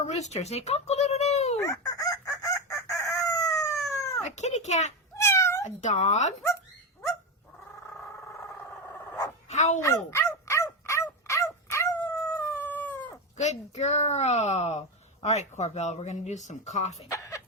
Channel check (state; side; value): normal; both; correlation 0.14